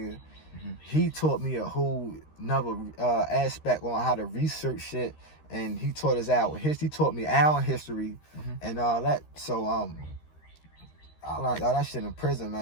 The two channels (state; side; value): late; right; 13 ms